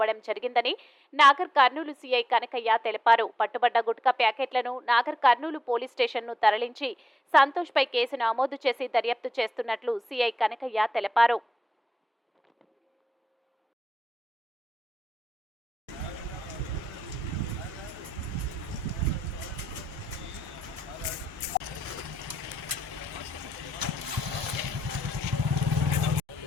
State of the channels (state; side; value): normal; both; correlation 0.89